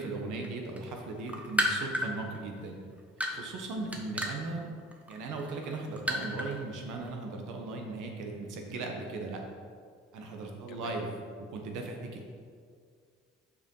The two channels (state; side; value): normal; both; correlation 0.47